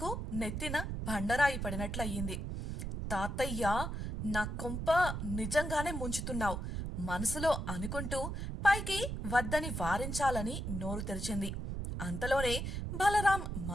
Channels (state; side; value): noise; right; rumble, 4 dB below the sound